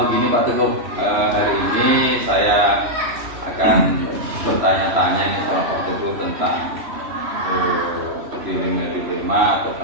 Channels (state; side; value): late; left; 3.0 ms